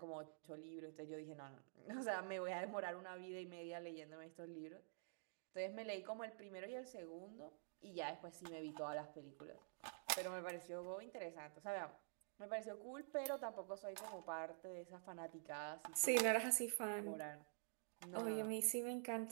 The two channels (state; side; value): silent; left; digital silence